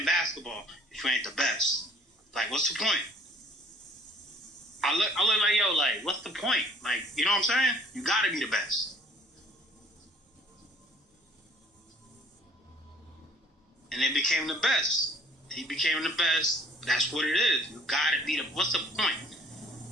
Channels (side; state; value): both; normal; correlation 0.55